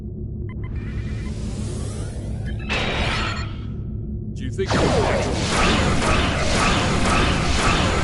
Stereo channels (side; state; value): both; identical; correlation 1.00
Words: Do you think